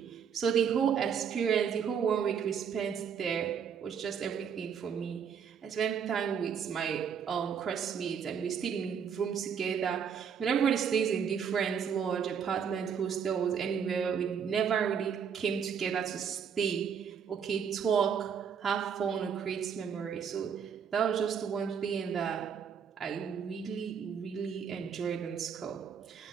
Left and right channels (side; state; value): left; quieter; 7.3 dB